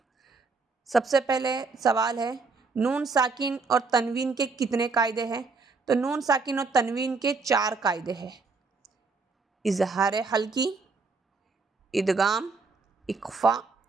सबसे पहले सवाल है, नून साकिन और तनवीन के कितने कायदे हैं? तो नून साकिन और तनवीन के 4 कायदे हैं। इजहार हल्की, इदगाम, इक्फ़ा,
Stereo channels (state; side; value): quieter; left; 4.3 dB